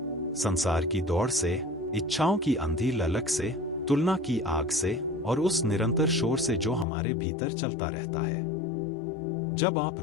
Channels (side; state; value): right; drops out; at 6.9 s